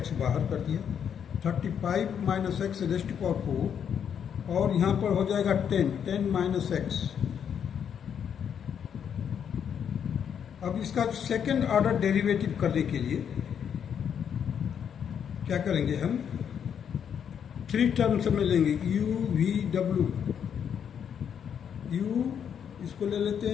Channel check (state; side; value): quieter; right; 8.1 dB